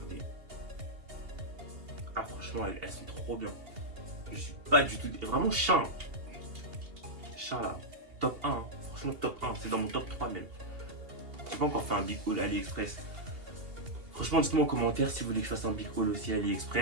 Ah, franchement, elles sont trop bien. Je suis pas du tout... Vraiment, Shein. Shein, là. Top 1. Hein. Franchement, top 1. C'est dans mon top 3, même. J'ai pas encore fait un big haul AliExpress. Franchement, dites-moi en commentaire si vous voulez que je fasse un big haul aussi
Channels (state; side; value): late; left; 2.8 ms